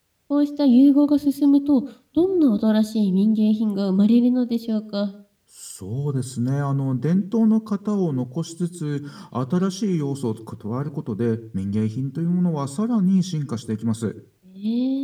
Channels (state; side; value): identical; both; correlation 1.00